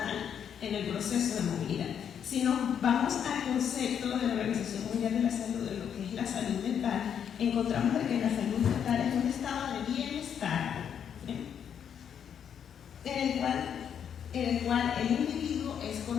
en el proceso de movilidad. Si nos vamos al concepto de la Organización Mundial de la Salud, de lo que es la salud mental, encontramos de que la salud mental es un estado de bienestar, en el cual el individuo es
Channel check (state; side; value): quieter; right; 8.3 dB